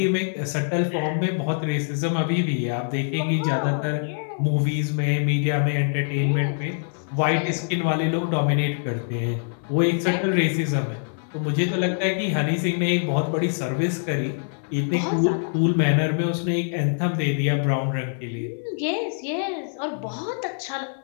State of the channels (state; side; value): silent; right; 59 dB below the other